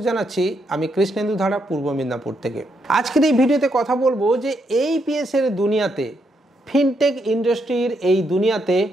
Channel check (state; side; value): normal; both; correlation 0.78